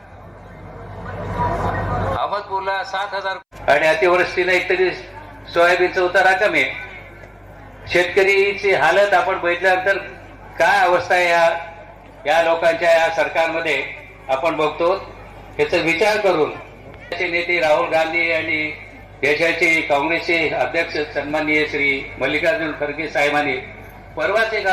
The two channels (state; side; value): identical; both; correlation 1.00